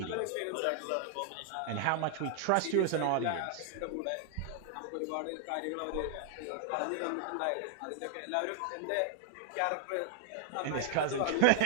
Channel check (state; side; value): different; both; correlation -0.01